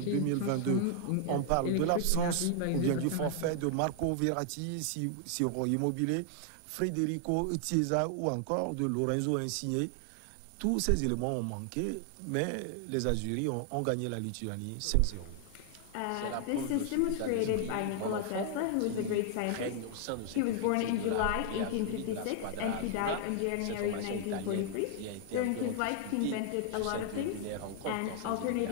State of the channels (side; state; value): both; different; correlation 0.00